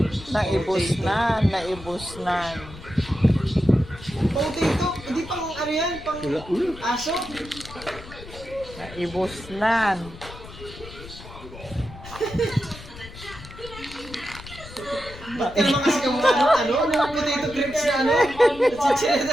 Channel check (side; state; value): left; noise; rumble, 16 dB below the sound